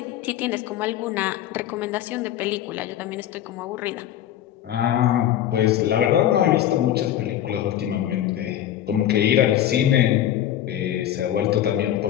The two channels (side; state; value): right; quieter; 11.6 dB